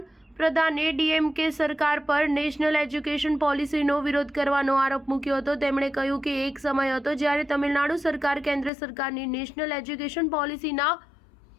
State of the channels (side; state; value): right; drops out; at 8.7 s